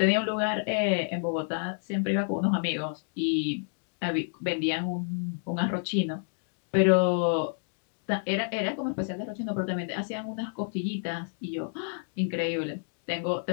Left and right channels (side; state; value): right; silent; digital silence